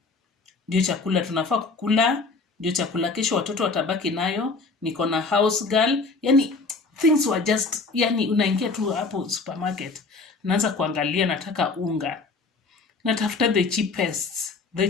ndio chakula tunafaa kukula, ndio chakula kesho watoto watabaki nayo, niko na house girl. Yani things were just, yani unaingia tu hapo supermarket, naanza kuangalia, nataka unga, natafuta the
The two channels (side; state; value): right; quieter; 4.0 dB